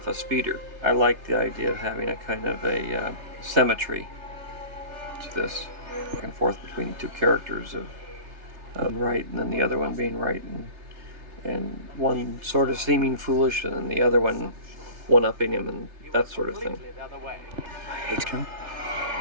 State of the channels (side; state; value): left; late; 3.3 ms